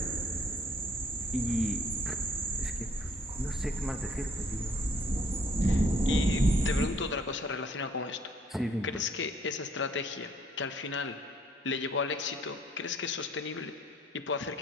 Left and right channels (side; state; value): both; normal; correlation 0.63